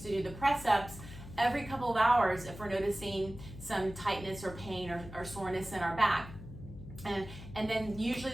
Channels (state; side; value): noise; left; hum, 13 dB below the sound